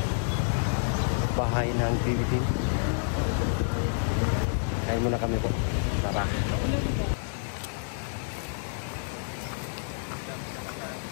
bahay ng PBT. Kain muna kami po. Tara.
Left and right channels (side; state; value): right; silent; 59 dB below the other